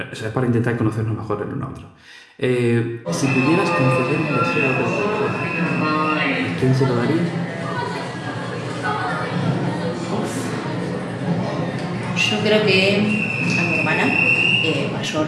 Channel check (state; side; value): identical; both; correlation 1.00